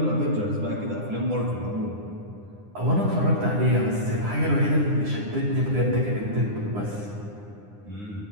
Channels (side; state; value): left; late; 9.8 ms